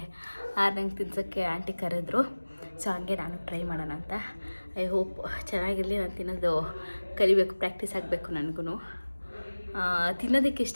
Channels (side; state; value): both; inverted; correlation -1.00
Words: ನಂಗೆ ತಿನ್ಸೋಕ್ಕೆ ಆಂಟಿ ಕರೆದ್ರು. ಸೊ ಹಂಗೆ ನಾನು ಟ್ರೈ ಮಾಡೋಣ ಅಂತ. ಐ ಹೋಪ್ ಚೆನ್ನಾಗಿರಲಿ. ನಾನು ತಿನ್ನೋದು ಕಲಿಬೇಕು, ಪ್ರಾಕ್ಟೀಸ್ ಆಗಬೇಕು ನನಗೂ. ತಿನ್ನೋದಕ್ಕೆ